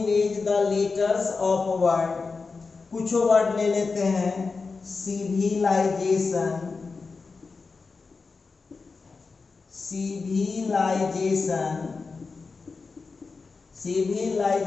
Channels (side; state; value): right; quieter; 4.4 dB